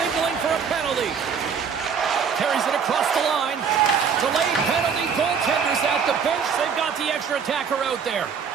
for a penalty. Carries it across the line. Delayed penalty. Goaltenders at the bench. They've got the extra attacker out there.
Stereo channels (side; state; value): left; quieter; 6.6 dB